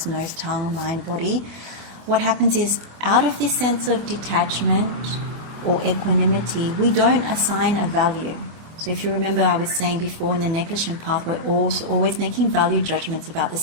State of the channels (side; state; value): left; late; 25 ms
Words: nose, tongue, mind, body, what happens is out of this sense of detachment or equanimity, we don't assign a value. So if you remember, I was saying before in the negligent path, we're always making value judgments about the